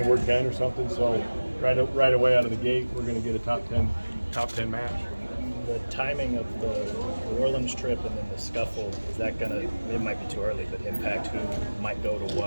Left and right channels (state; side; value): inverted; both; correlation -1.00